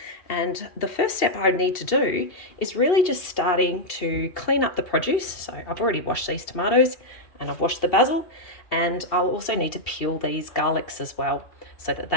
And the first step I need to do is really just starting to clean up the produce. So I've already washed these tomatoes and I've washed the basil, and I'll also need to peel these garlics as well so that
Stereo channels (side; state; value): right; late; 2.7 ms